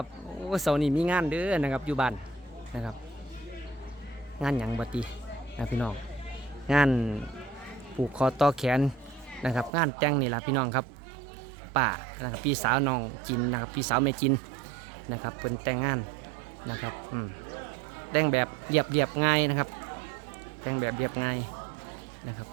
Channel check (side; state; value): left; drops out; at 9.7 s